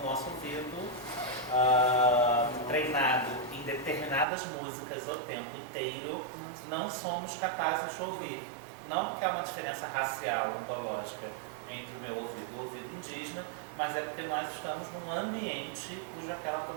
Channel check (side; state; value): left; drops out; at 4.2 s